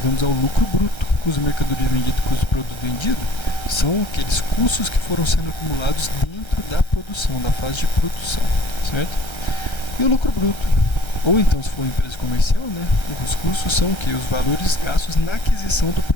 ao lucro bruto. Custo da mercadoria vendida e custo do produto vendido são aqueles custos que foram sendo acumulados dentro da produção, da fase de produção, certo? E o lucro bruto, ou então se for uma empresa comercial, né, os custos são o que? Os valores gastos na aquisição do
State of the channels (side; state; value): right; late; 1.3 ms